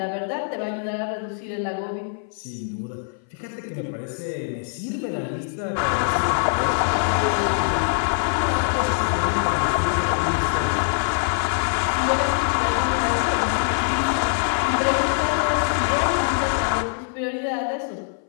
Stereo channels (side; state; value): right; silent; 58 dB below the other